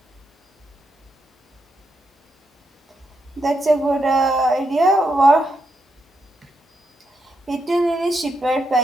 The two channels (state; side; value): normal; both; correlation 0.82